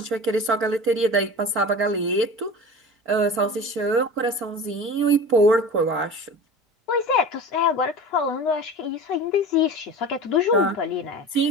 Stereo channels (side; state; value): both; normal; correlation 0.35